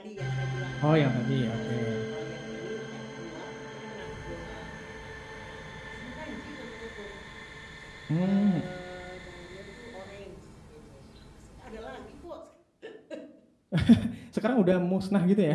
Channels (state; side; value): identical; both; correlation 1.00